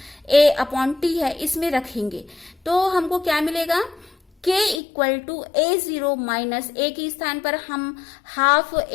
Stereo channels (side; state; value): right; drops out; at 4.8 s